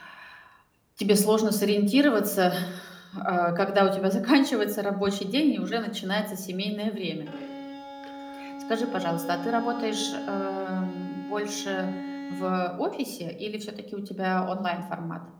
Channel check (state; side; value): identical; both; correlation 1.00